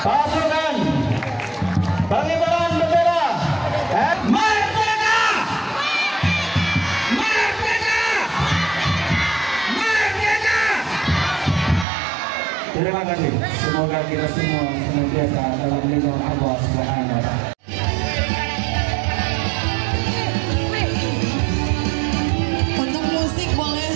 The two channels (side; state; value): left; drops out; at 11.9 s